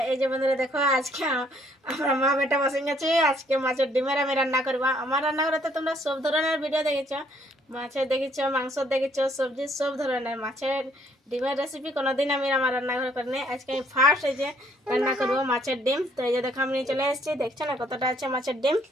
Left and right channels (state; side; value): normal; both; correlation 0.65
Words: এই যে বন্ধুরা দেখো, আজকে আমরা মা বেটা বসে গেছি। আজকে মাছের ডিমের আমি রান্না করবো। আমার রান্না করে তো তোমরা সব ধরনের ভিডিও দেখেছো, মাছের দেখেছো, মাংস দেখেছো, সবজি সব ধরনের। মাছের ডিমের রেসিপি কোনোদিন আমি আমার রান্নাঘরে করিনি। আজকে আমি ফার্স্ট এই যে রান্না করবো মাছের ডিম। তো এই যে দেখো আমি নিয়ে চলে এসেছি, দেখছো না কতটা আছে মাছের ডিম।